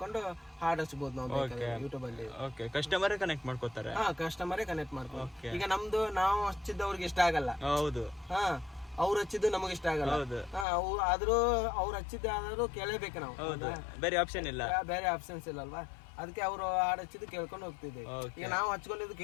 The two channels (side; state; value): right; drops out; at 10.7 s